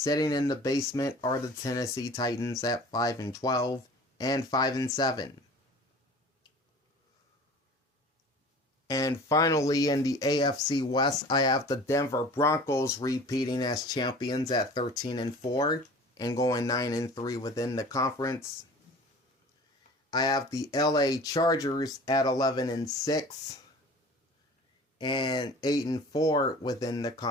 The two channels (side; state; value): both; normal; correlation 0.43